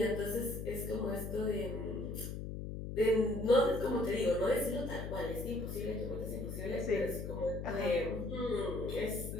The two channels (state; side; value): noise; left; hum, 6 dB below the sound